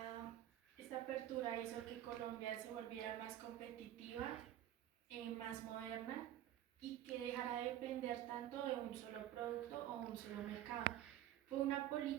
esta apertura hizo que Colombia se volviera más competitiva, más moderna y que dejara de depender tanto de un solo producto o un solo mercado. Fue una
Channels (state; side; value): quieter; left; 12.4 dB